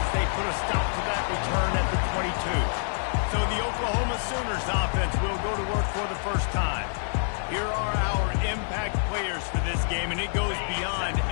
they put a stop to that return at the 22. So the Oklahoma Sooners offense will go to work for the first time. Here are our impact players for this game, and it goes beyond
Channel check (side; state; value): right; silent; 60 dB below the other